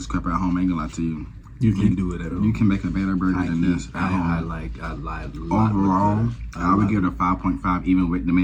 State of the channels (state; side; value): identical; both; correlation 1.00